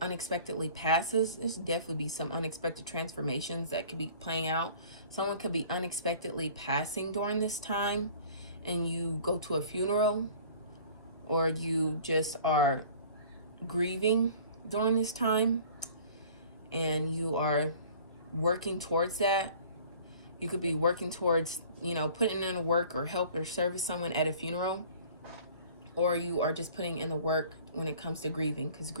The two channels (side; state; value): both; inverted; correlation -0.48